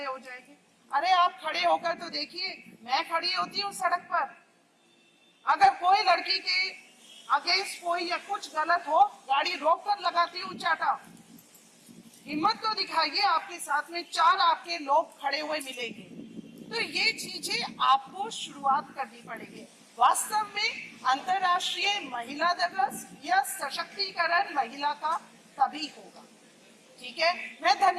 हो जाएंगे। अरे आप खड़े होकर तो देखिए, मैं खड़ी होती हूँ सड़क पर, अगर कोई लड़की के अगेंस्ट कोई या कुछ गलत हो, गाड़ी रोक कर लगाती हूँ चाटा। हिम्मत तो दिखाइए, आपके साथ में 4 आपके लोग खड़े हुए मिलेंगे। तो ये चीजें आपको शुरुआत करनी पड़ेगी। वास्तव में अंतर्राष्ट्रीय महिला दिवस या सशक्तिकरण महिला का तभी होगा। ठीक है, मैं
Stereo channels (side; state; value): both; identical; correlation 1.00